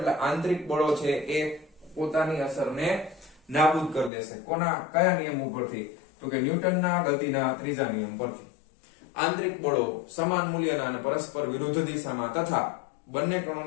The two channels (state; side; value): drops out; right; at 4.1 s